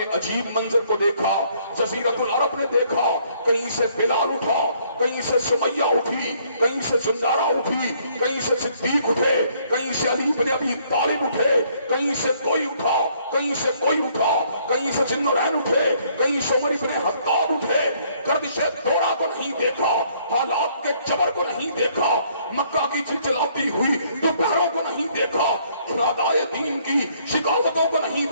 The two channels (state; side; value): inverted; both; correlation -0.65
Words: عجیب منظر کو دیکھا، جزیرت العرب نے دیکھا، کہیں سے بلال اٹھا، کہیں سے سمیہ اٹھی، کہیں سے زنجارہ اٹھی، کہیں سے صدیق اٹھے، کہیں سے علی بن ابی طالب اٹھے، کہیں سے کوئی اٹھا، کہیں سے کوئی اٹھا، کہیں سے ذوالنورین اٹھے، کہیں سے عمر بن خطاب اٹھے۔ گردش دورہ کو نہیں دیکھا، حالات کے جبر کو نہیں دیکھا، مکہ کی چلچلاتی ہوئی دوپہروں کو نہیں دیکھا، اعدائے دین کی شکاوتوں کو نہیں